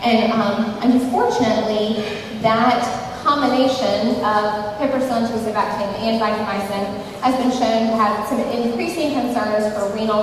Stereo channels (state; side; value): identical; both; correlation 1.00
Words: and unfortunately, that combination of piperacillin tazobactam and vancomycin has been shown to have some increasing concerns for renal